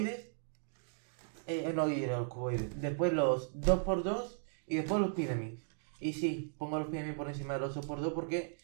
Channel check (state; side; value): silent; left; digital silence